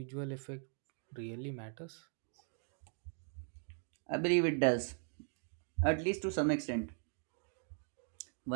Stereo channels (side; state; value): left; silent; 51 dB below the other